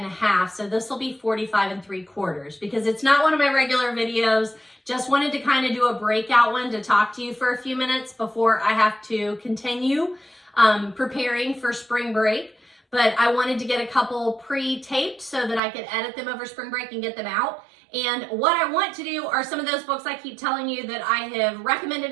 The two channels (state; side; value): drops out; left; at 15.6 s